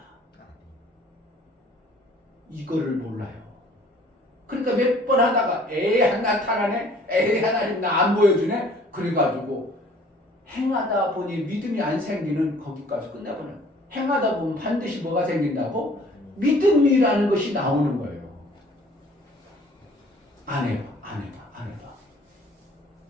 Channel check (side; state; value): both; normal; correlation 0.54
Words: 이거를 몰라요. 그러니까 몇 번 하다가 나타나네, 하나님 나 안 보여주네. 그래가지고 행하다 보니 믿음이 안 생기는 거기까지 끝나버려요. 행하다 보면 반드시 뭐가 생긴다고? 믿음이라는 것이 나오는 거예요. 안 해봐.